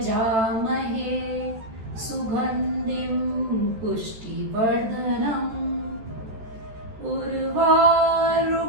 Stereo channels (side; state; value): left; late; 13 ms